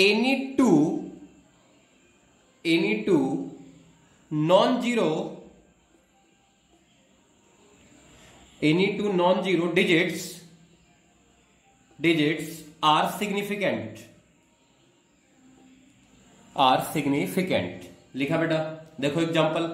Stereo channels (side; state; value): both; identical; correlation 1.00